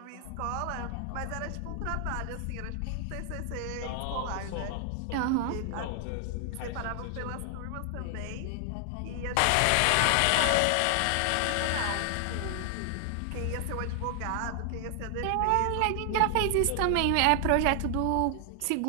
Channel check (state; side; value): different; both; correlation 0.00